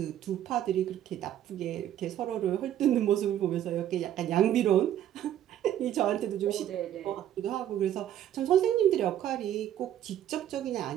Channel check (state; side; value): quieter; left; 11.3 dB